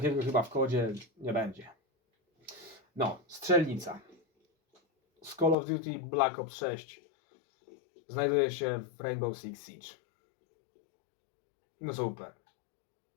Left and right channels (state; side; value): drops out; right; at 5.6 s